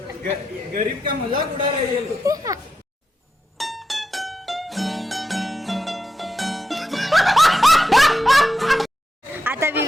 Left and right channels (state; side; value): normal; both; correlation 0.87